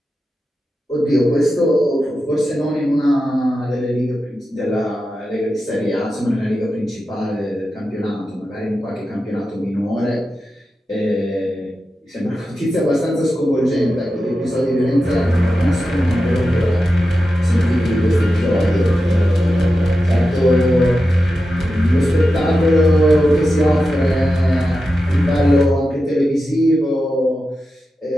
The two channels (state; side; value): normal; both; correlation 0.91